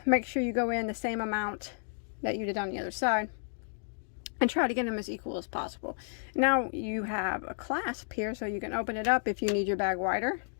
make sure you go in the same amount that you did on the other side, and try to get them as equal as possible. Now you have a clasp here, so you can open it up if you need your bag wider.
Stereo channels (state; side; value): silent; right; digital silence